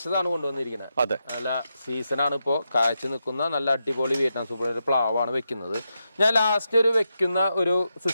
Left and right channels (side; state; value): both; inverted; correlation -0.86